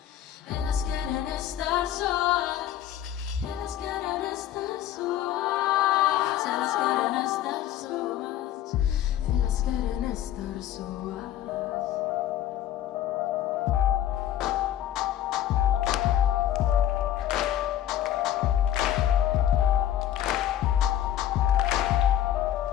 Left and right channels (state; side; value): quieter; right; 11.5 dB